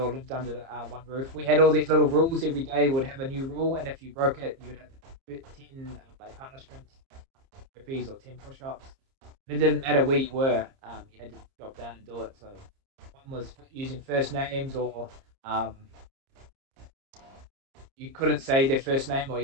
lived under one roof. We had all these little rules. Every day would have a new rule, and if you broke it, you would have 10 like punishments, burpees or 10 push-ups. It didn't matter where you were. You had to drop down and do it. So one was using first names, or you couldn't say their first name, or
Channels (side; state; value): left; late; 30 ms